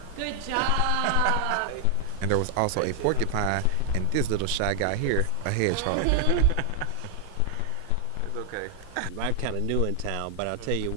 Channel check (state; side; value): different; both; correlation 0.00